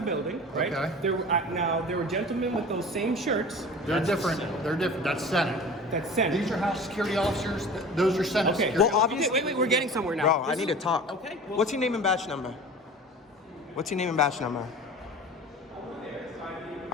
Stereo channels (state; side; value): normal; both; correlation 0.39